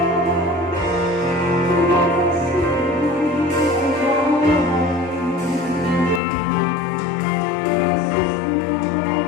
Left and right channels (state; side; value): drops out; right; at 6.2 s